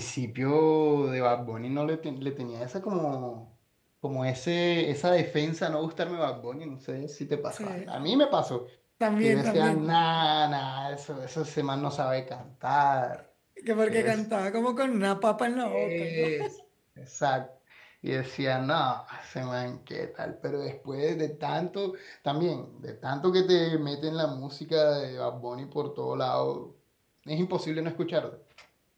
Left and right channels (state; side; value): identical; both; correlation 1.00